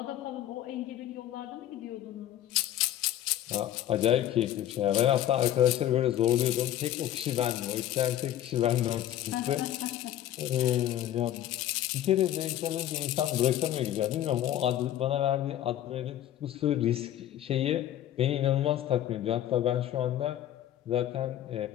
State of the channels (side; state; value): right; quieter; 12.1 dB